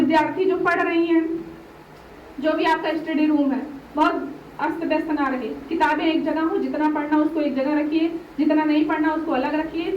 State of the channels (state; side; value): identical; both; correlation 1.00